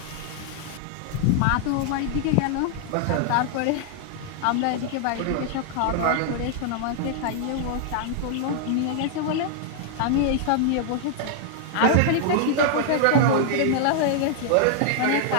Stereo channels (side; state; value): both; different; correlation -0.01